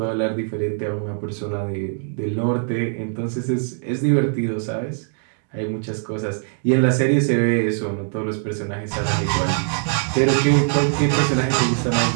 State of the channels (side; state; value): left; silent; 57 dB below the other